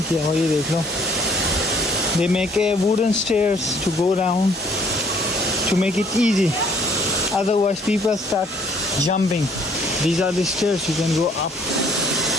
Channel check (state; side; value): normal; both; correlation 0.58